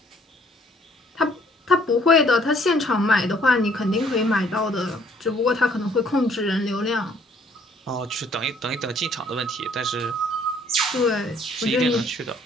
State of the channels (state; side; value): normal; both; correlation 0.62